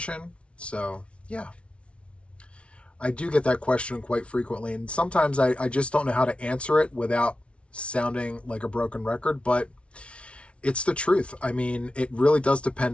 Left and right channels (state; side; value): late; right; 0.060 ms